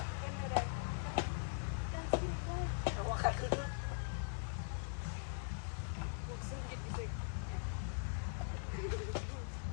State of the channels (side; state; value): right; silent; digital silence